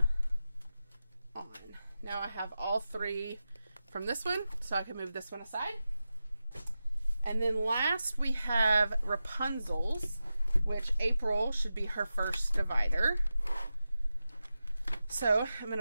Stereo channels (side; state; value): both; inverted; correlation -0.92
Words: on. Now I have all three from this one, so I can move this one aside. And then last we have Rapunzel's, which April should be her first divider. So I'm going